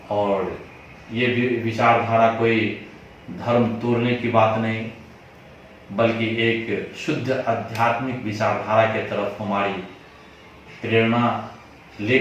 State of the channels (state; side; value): identical; both; correlation 1.00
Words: और ये विचारधारा कोई धर्म तोड़ने की बात नहीं, बल्कि एक शुद्ध आध्यात्मिक विचारधारा के तरफ हमारी प्रेरणा